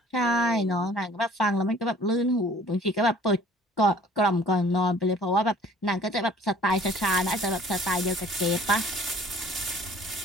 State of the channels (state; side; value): normal; both; correlation 0.52